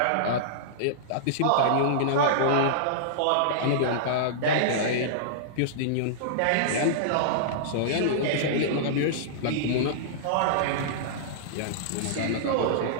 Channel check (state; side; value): different; both; correlation -0.02